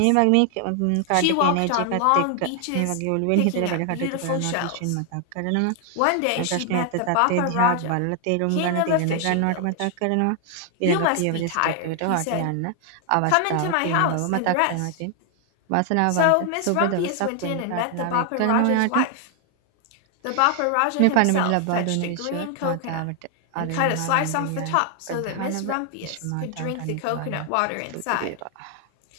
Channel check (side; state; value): both; different; correlation 0.00